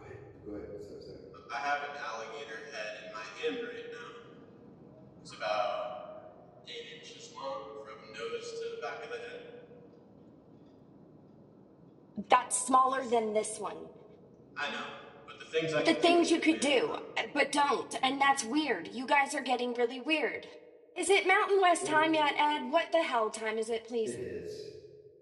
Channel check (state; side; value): identical; both; correlation 1.00